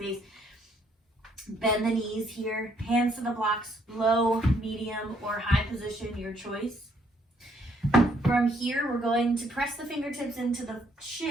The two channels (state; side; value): normal; both; correlation 0.68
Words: bend the knees here, hands to the blocks, low, medium, or high position, your choice. From here, we're going to press the fingertips into the